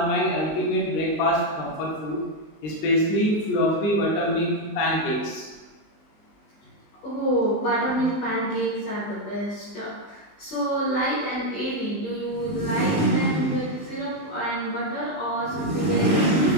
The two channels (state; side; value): late; right; 19 ms